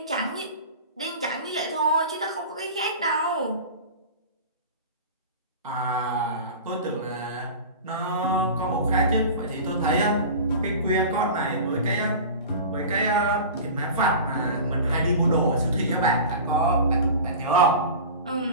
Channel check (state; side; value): inverted; both; correlation -0.34